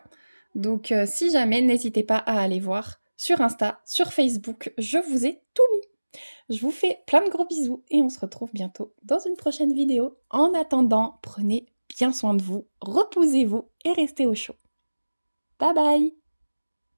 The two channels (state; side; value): inverted; both; correlation -1.00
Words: donc si jamais, n'hésitez pas à aller voir sur Insta, sur Facebook, je vous ai tout mis. Je vous fais plein de gros bisous et on se retrouve bientôt dans une prochaine vidéo. En attendant, prenez bien soin de vous, reposez-vous et restez au chaud. Bye bye!